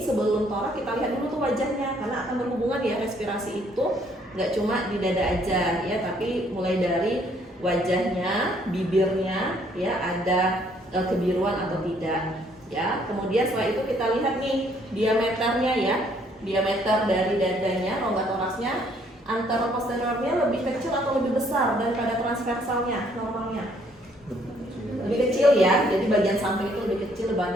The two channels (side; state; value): both; normal; correlation 0.65